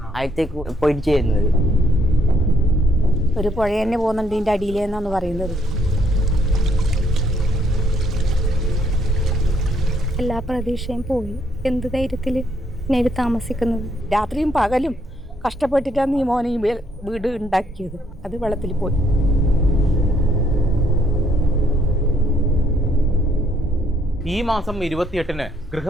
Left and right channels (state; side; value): normal; both; correlation 0.70